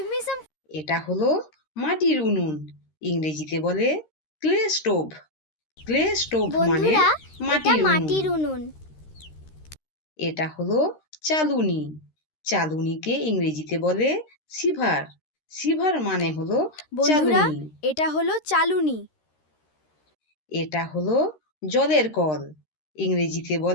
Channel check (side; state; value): right; late; 13 ms